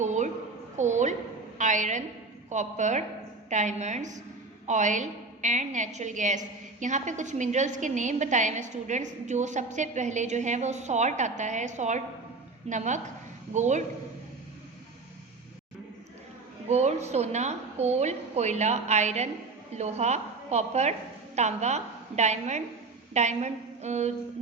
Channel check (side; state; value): left; quieter; 3.7 dB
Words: coal, iron, copper, diamonds, oil and natural gas. यहाँ पे कुछ मिनरल्स के नेम बताए हैं स्टूडेंट्स. जो सबसे पहले जो है वो सॉल्ट आता है, सॉल्ट नमक, गोल्ड सोना, कोल कोयला, आयरन लोहा, कॉपर तांबा, डायमंड